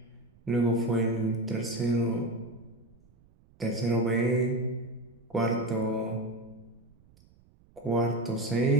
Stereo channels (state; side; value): noise; right; rumble, 29 dB below the sound